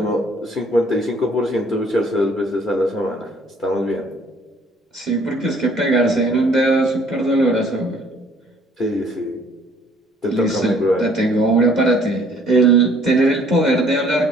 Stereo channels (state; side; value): normal; both; correlation 0.59